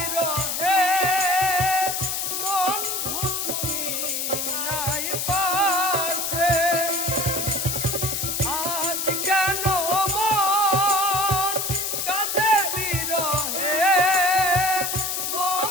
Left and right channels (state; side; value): noise; left; hiss, 1 dB below the sound